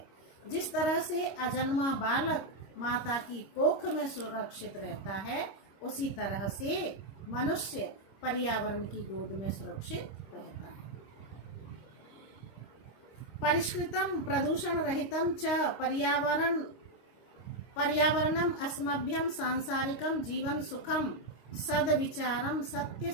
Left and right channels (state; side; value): late; right; 26 ms